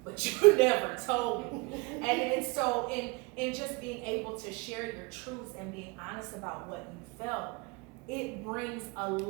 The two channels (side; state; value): left; quieter; 27.5 dB